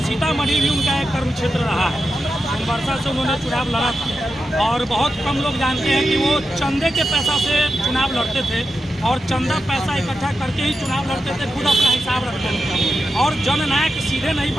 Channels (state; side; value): normal; both; correlation 0.89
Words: सीतामढ़ी भी उनका एक कर्म क्षेत्र रहा है। सोनवर्षा से उन्होंने चुनाव लड़ा था और बहुत कम लोग जानते हैं कि वो चंदे के पैसा से चुनाव लड़ते थे और चंदा पैसा इकट्ठा करके ही चुनाव लड़ते थे, खुद अपना हिसाब रखते थे। और जननायक सीधे नहीं